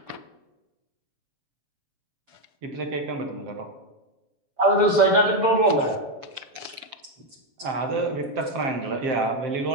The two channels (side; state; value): left; late; 7.2 ms